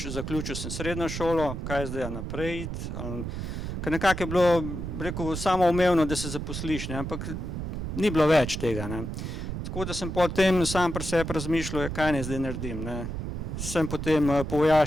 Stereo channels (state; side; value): noise; right; rumble, 5 dB below the sound